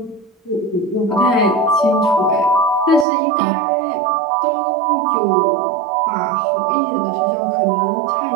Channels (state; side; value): drops out; left; at 3.1 s